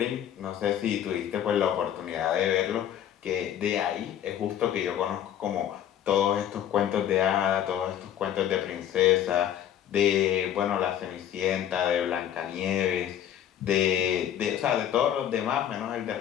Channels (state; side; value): quieter; right; 10.3 dB